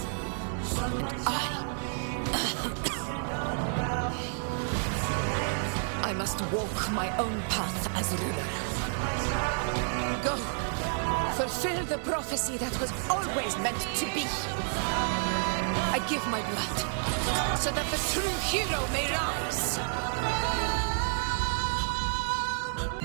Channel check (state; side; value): silent; left; 58 dB below the other